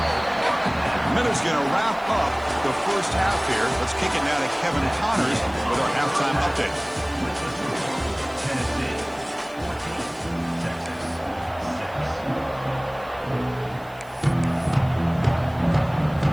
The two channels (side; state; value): right; noise; hiss, 27 dB below the sound